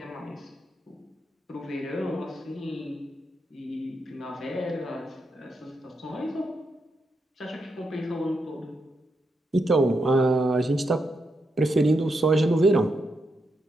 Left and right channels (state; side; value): normal; both; correlation 0.83